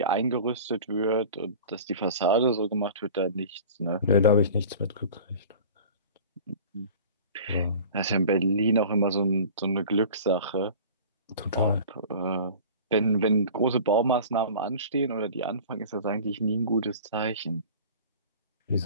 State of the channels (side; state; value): both; inverted; correlation -0.41